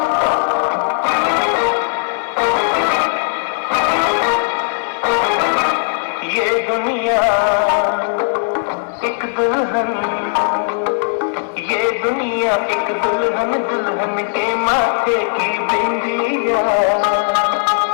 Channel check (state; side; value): silent; right; digital silence